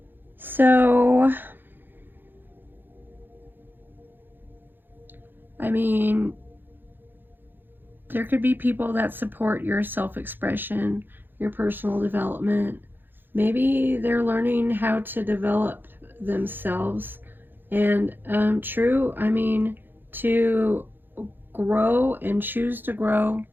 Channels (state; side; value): late; left; 0.096 ms